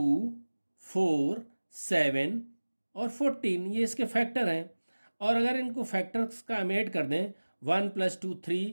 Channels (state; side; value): inverted; both; correlation -1.00